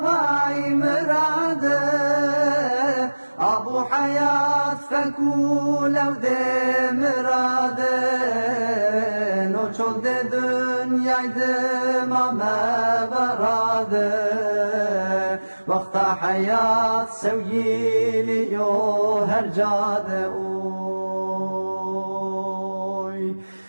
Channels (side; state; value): both; inverted; correlation -1.00